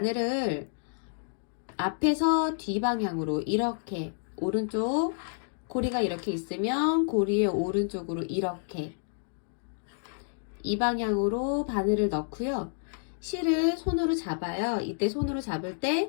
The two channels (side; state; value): right; silent; digital silence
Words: 앞에서 뒷방향으로 이렇게 오른쪽 고리가 이렇게 있으면 고리의 오른쪽으로 이렇게 이 방향으로 바늘을 넣고요. 실을 손으로 잡아요. 이때 손으로 잡을